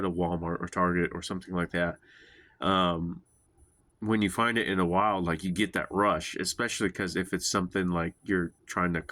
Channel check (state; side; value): identical; both; correlation 1.00